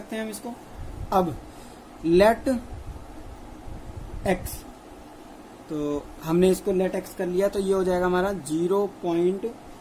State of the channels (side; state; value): both; identical; correlation 1.00